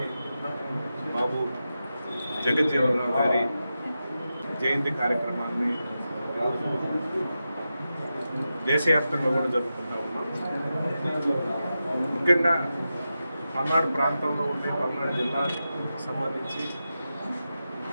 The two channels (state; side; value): inverted; both; correlation -0.91